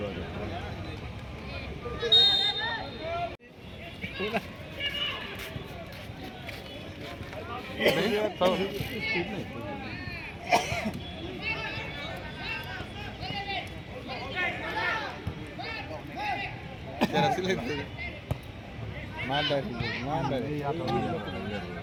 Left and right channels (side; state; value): both; identical; correlation 1.00